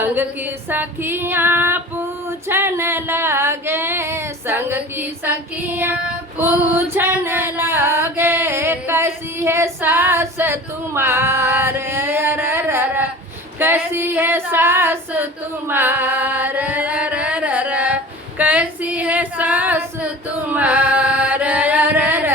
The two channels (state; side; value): normal; both; correlation 0.38